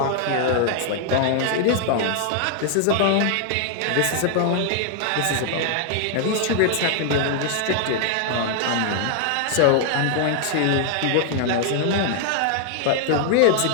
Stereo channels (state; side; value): different; both; correlation 0.00